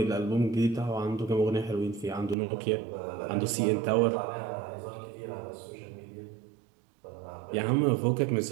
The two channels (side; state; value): left; drops out; at 2.4 s